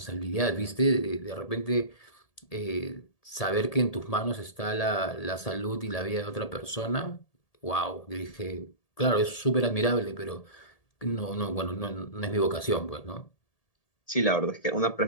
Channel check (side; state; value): right; late; 1.8 ms